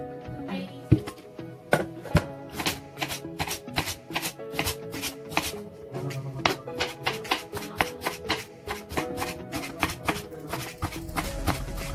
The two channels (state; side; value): identical; both; correlation 1.00